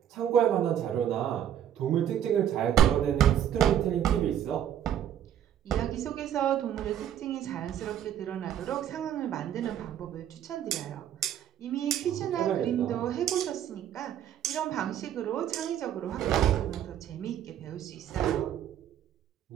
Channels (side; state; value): left; quieter; 10.3 dB